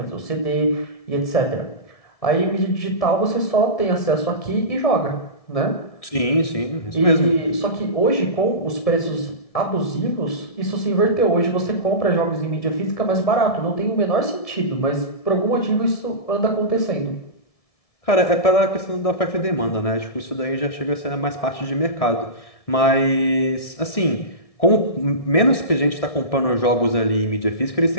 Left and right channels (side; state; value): right; late; 1.6 ms